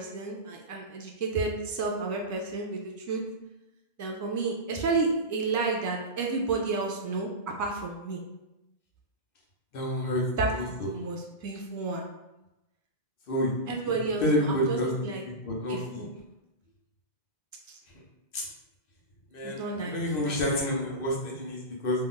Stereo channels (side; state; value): right; late; 2.6 ms